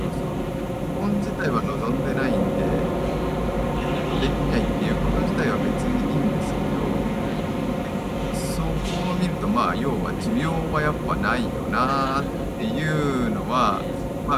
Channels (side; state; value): both; identical; correlation 1.00